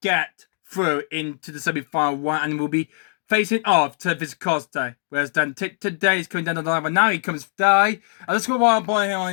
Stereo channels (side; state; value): right; silent; digital silence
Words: get through into the semi-final one, and we'll be facing off to Costa. Whereas Dan today is coming down the line, but now he comes die. And let's go while I'm pulling him on